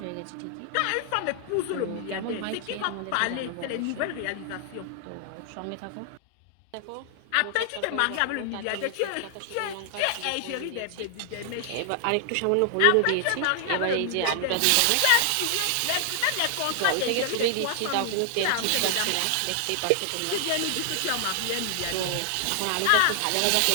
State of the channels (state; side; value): different; both; correlation 0.00